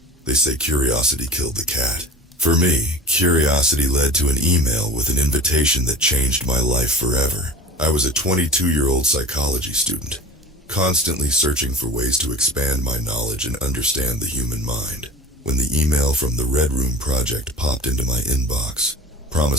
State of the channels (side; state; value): both; normal; correlation 0.37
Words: They say curiosity killed the cat. For me, curiosity led to an email with an invitation that changed my life forever. I was a 22-year-old psychology student, constantly searching for ways to expand my knowledge and understand the human mind, when the email from the Red Room Project popped into my inbox,